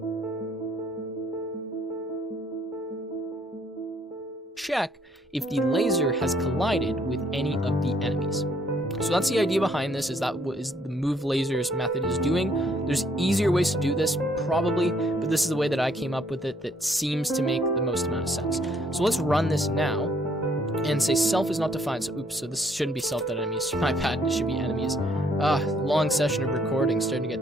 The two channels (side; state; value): both; normal; correlation 0.66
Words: check if the laser has collided with any of the enemies. So that's the idea behind this, is that what is the move lasers method is doing. There's easier ways to do this, probably, but this is the way that I came up with it that seems to make the most amount of sense. So let's run this now and say self is not defined. So oops, so this shouldn't be self.enemies. My bad, this should be enemies. Long session of recording, starting to